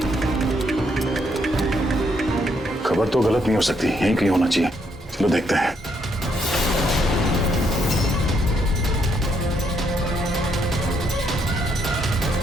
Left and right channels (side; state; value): both; normal; correlation 0.74